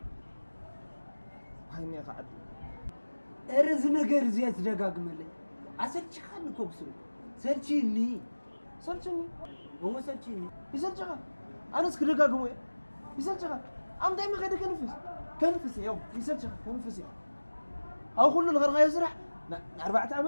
هايني قاعد ارز ነገር زيات ደጋግመልኝ አሰልች ካን ኮብሱ ሰልችኒ هو سلچني يسلچها انا اسك ደጋግሞ يسلچها ام دايما خد كنفس يوم يسلچها كنفس او كل الغرغا يسرح 4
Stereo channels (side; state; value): both; inverted; correlation -1.00